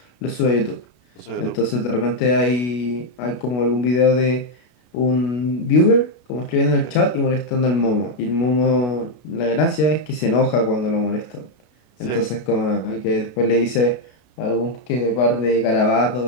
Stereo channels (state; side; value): late; right; 33 ms